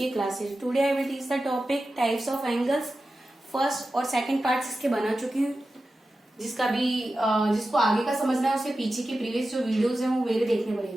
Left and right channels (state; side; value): normal; both; correlation 0.93